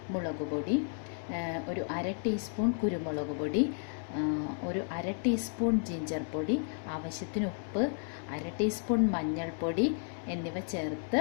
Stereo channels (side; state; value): right; silent; 56 dB below the other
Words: മുളക് പൊടി, ഒരു 1/2 ടീസ്പൂൺ കുരുമുളക് പൊടി, ഒരു 1/2 ടീസ്പൂൺ ജിഞ്ചർ പൊടി, ആവശ്യത്തിന് ഉപ്പ്, 1/2 ടീസ്പൂൺ മഞ്ഞൾപ്പൊടി എന്നിവ ചേർത്ത്